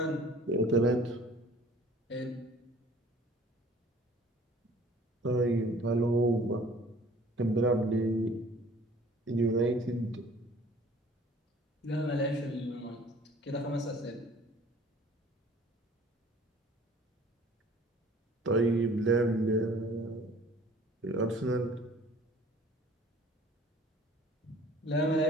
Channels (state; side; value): normal; both; correlation 0.51